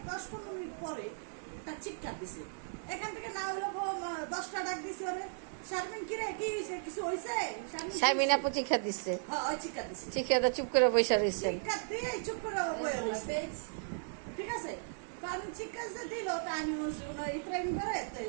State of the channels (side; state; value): left; silent; digital silence